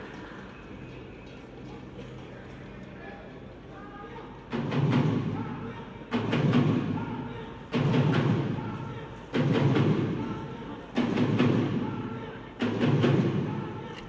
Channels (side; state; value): both; identical; correlation 1.00